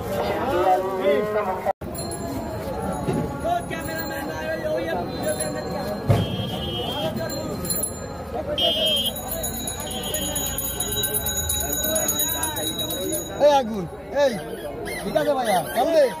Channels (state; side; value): identical; both; correlation 1.00